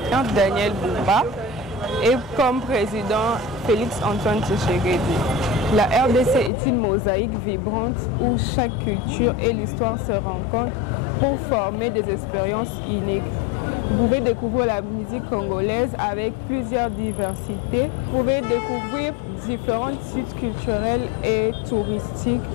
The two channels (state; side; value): drops out; right; at 6.5 s